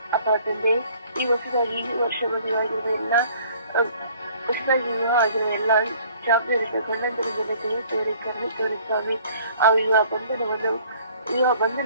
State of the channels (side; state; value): both; inverted; correlation -0.56